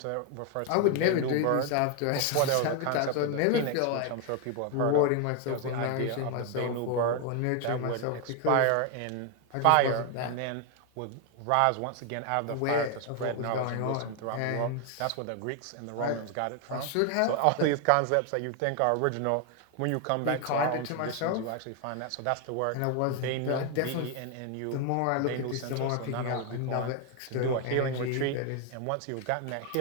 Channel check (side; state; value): both; different; correlation 0.01